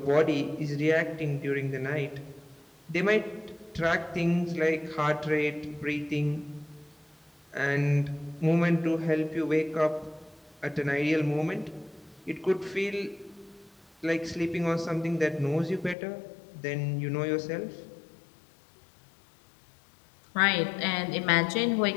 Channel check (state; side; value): drops out; right; at 16.0 s